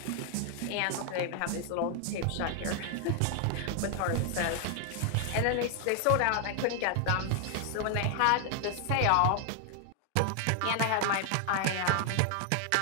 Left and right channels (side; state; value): both; different; correlation 0.00